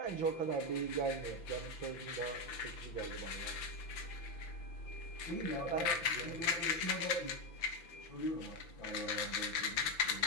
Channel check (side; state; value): right; late; 5.9 ms